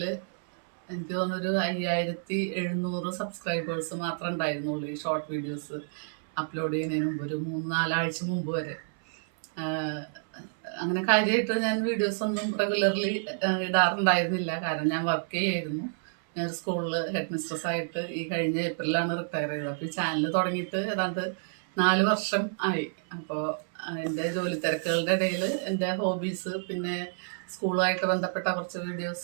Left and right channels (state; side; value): silent; left; 58 dB below the other